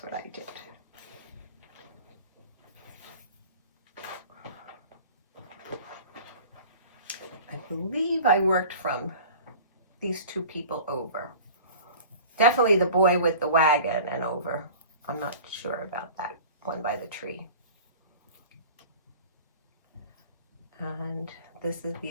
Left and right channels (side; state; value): both; inverted; correlation -0.42